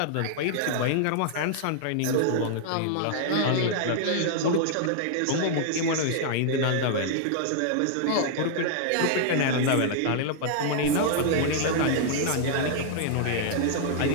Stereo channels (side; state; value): both; different; correlation -0.01